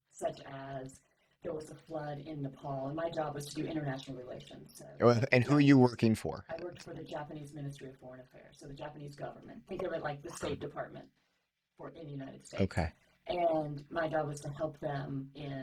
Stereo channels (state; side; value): identical; both; correlation 1.00